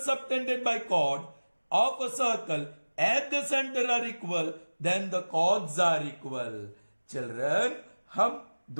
subtended by chord of a circle at the center are equal, then the chords are equal. Children, हम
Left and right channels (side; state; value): both; inverted; correlation -1.00